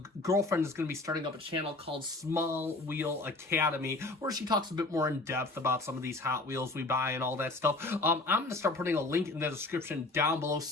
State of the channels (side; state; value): right; quieter; 3.1 dB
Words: girlfriend is going to be starting up a channel called Small Wheel Academy, where she talks a bit more in depth about some of these Hot Wheels we buy and all that stuff. I'm going to start putting a link in the description down below as